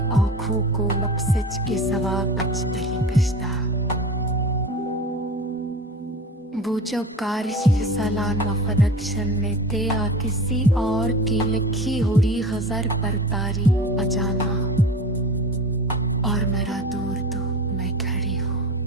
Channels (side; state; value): both; normal; correlation 0.34